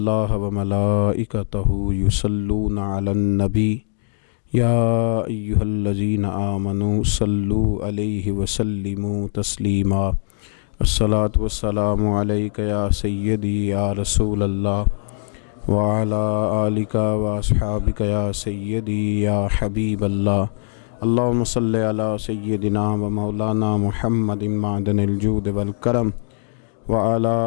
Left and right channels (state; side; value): silent; right; 60 dB below the other